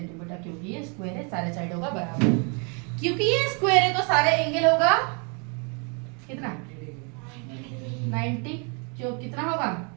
क्योंकि ये स्क्वायर है सारे साइड होगा बराबर। क्योंकि ये स्क्वायर है तो सारे एंगल होगा कितना 90। क्यों कितना होगा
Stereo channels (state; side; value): quieter; left; 36.0 dB